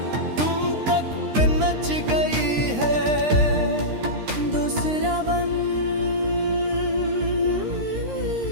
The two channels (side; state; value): left; late; 13 ms